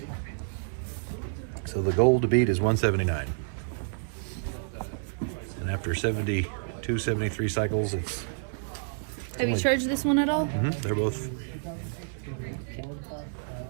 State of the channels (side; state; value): left; silent; 58 dB below the other